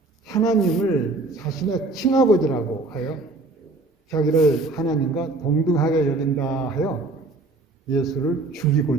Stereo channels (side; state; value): left; quieter; 3.2 dB